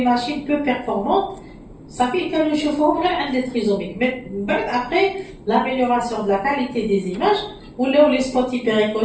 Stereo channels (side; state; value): both; identical; correlation 1.00